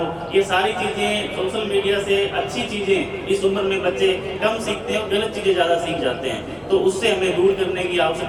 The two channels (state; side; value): identical; both; correlation 1.00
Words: ये सारी चीज़ें सोशल मीडिया से अच्छी चीज़ें इस उम्र में बच्चे कम सीखते हैं और गलत चीज़ें ज़्यादा सीख जाते हैं, तो उससे हमें दूर करने की